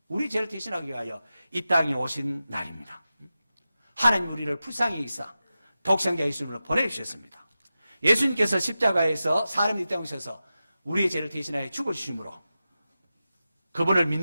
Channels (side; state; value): both; inverted; correlation -0.93